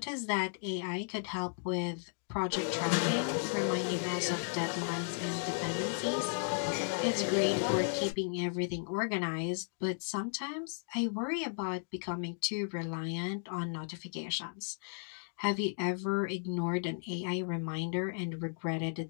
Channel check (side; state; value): right; silent; digital silence